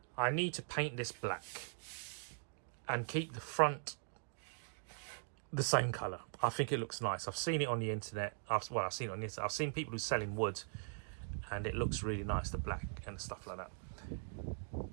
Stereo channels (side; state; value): left; silent; digital silence